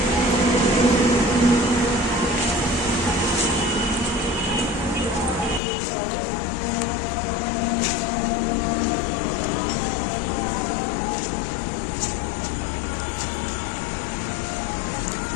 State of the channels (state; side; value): drops out; right; at 5.6 s